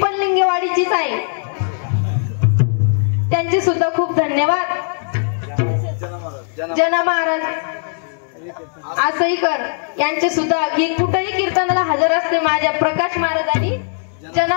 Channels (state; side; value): silent; right; digital silence